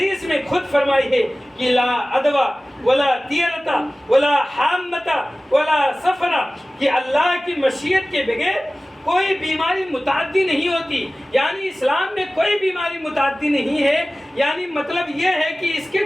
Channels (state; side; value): normal; both; correlation 0.97